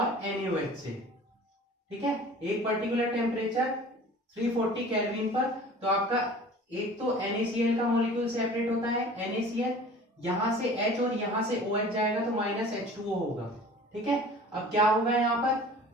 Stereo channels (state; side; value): normal; both; correlation 0.44